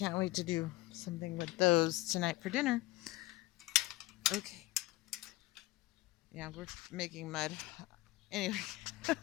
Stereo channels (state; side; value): quieter; right; 18.0 dB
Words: wait to do something with those tonight for dinner. Okay. Yeah, we're making mud. Anyway,